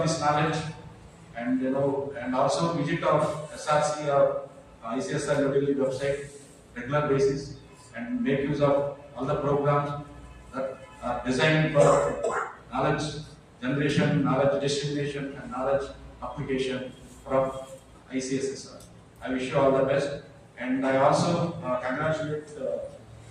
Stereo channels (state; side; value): identical; both; correlation 1.00